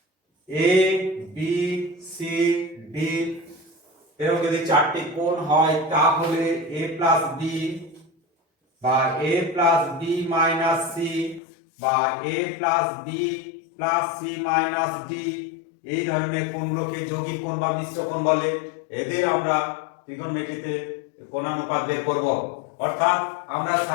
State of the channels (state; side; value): drops out; right; at 11.4 s